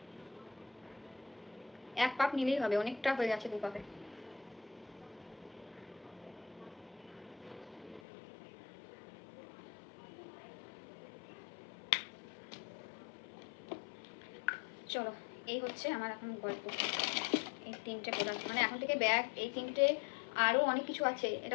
এক পাপ নিলেই হবে, অনেকটা হয়ে গেছে 2 পাপে। চলো, এই হচ্ছে আমার এখন গল্প। এই 3টে প্রোডাক্ট, মানে এখন থেকে ব্যাগ, এই 3টে, আরও অনেক কিছু আছে।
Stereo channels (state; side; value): drops out; right; at 8.0 s